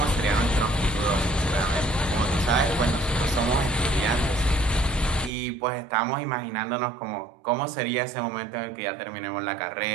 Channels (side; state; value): left; drops out; at 5.3 s